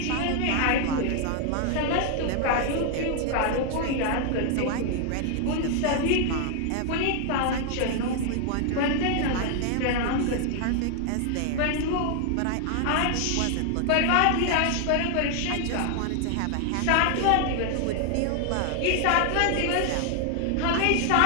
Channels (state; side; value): different; both; correlation 0.00